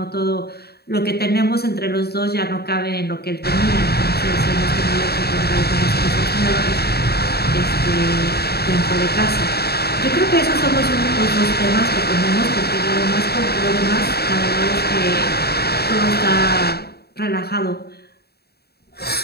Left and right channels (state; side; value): late; right; 0.47 ms